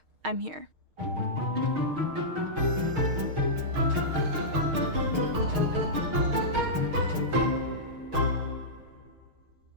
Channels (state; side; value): late; left; 6.4 ms